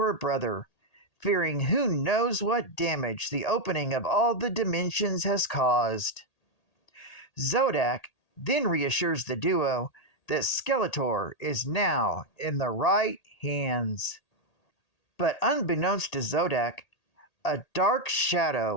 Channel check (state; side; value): late; right; 1.8 ms